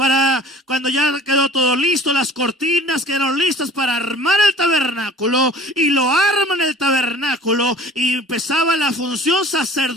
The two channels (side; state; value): both; normal; correlation 0.47